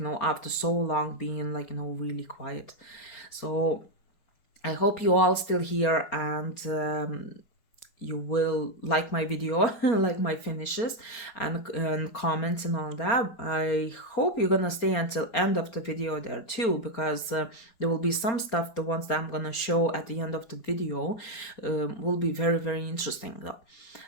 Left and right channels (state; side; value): late; right; 4.4 ms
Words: after so long being, like, really quiet. So I hope you all still here, and you will like my video, like my finishes, and comments and all that. I hope you're gonna stay until end of the video there too, because there will be some stuff, the ones that I'm gonna show at the end of the video will be very, very interesting though.